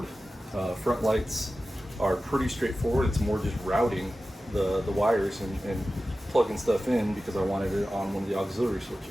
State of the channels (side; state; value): both; normal; correlation 0.94